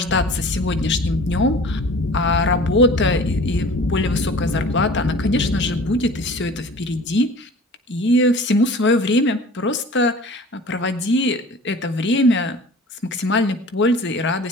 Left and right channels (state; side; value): normal; both; correlation 0.43